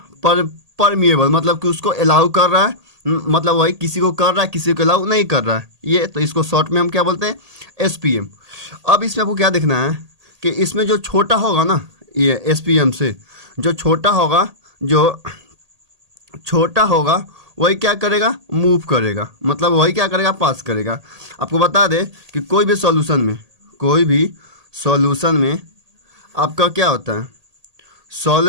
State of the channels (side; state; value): left; late; 1.8 ms